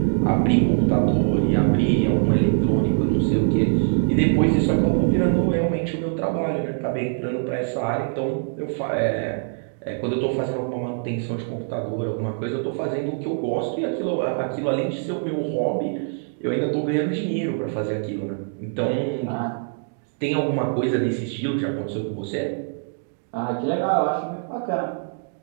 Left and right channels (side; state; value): left; silent; digital silence